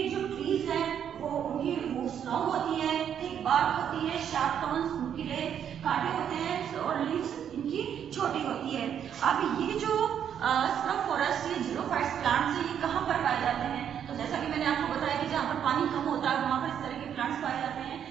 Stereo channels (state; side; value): quieter; left; 8.9 dB